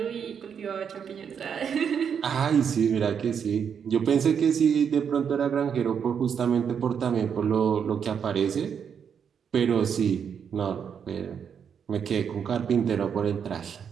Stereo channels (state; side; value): quieter; left; 7.4 dB